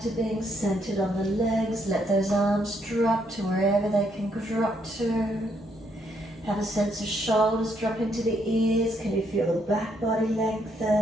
to being centered on the legs. Let those arms drop to wherever they can drop to. Have a sense of shoulders drop into the ears. Can you feel the back body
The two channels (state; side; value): normal; both; correlation 0.73